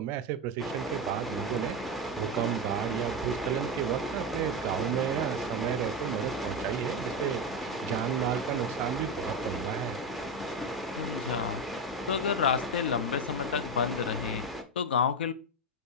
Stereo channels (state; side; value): normal; both; correlation 0.13